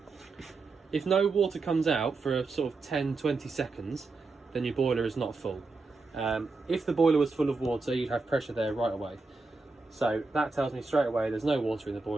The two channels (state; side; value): quieter; left; 3.8 dB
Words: If no water comes out for a sort of 10-20 seconds, then your boiler is not full. If the boiler was full of water, you'd have pressure there right away. So that tells me straight away there's no water in the